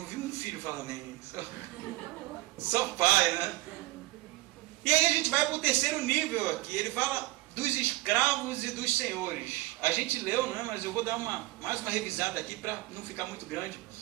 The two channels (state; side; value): quieter; left; 19.5 dB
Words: vi um filho falar amém. Só pai, né? E aí a gente vai para o terceiro nível aqui. Ele fala dos escravos e dos senhores. A gente leu, né? Mas eu vou dar mais uma revisada aqui para não ficar muito grande.